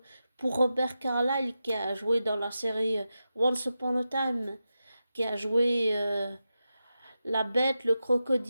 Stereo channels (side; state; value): both; inverted; correlation -0.90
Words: pour Robert Carlyle qui a joué dans la série Once Upon a Time, qui a joué la bête, le